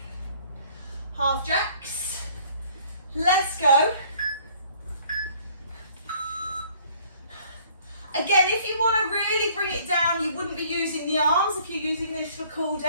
Half jacks. Let's go. Again, if you want to really bring it down, you wouldn't be using the arms if you're using this for cool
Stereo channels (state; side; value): inverted; both; correlation -0.57